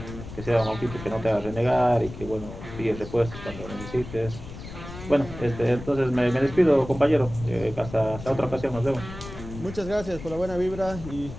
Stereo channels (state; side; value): noise; left; rumble, 12 dB below the sound